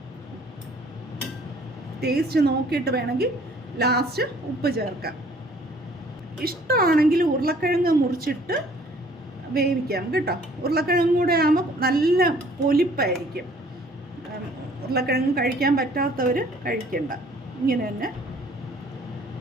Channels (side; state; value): both; normal; correlation 0.56